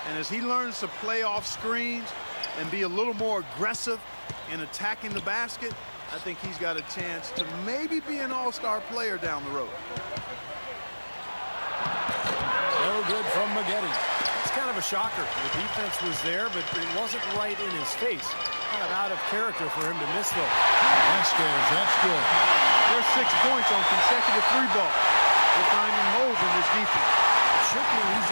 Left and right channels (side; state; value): both; inverted; correlation -1.00